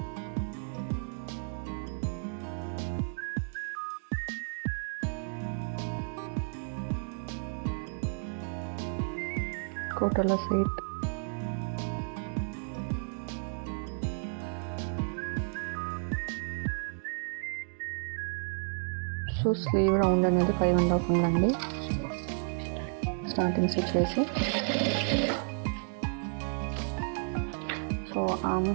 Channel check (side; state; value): left; silent; 56 dB below the other